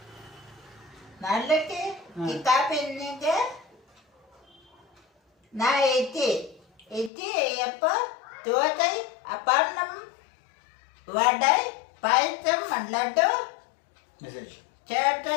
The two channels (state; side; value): drops out; right; at 7.1 s